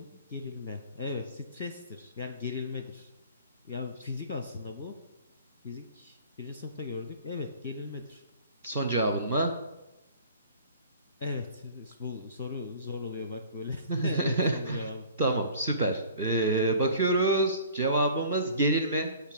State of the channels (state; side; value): inverted; both; correlation -0.46